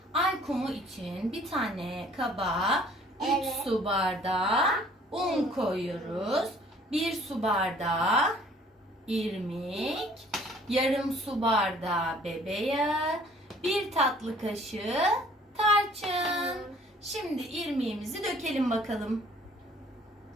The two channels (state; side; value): normal; both; correlation 0.55